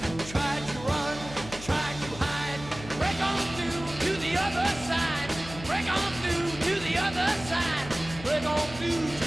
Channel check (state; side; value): noise; left; hum, 14 dB below the sound